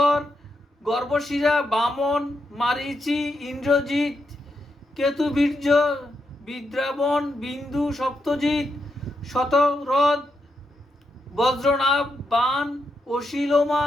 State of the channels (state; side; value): normal; both; correlation 0.83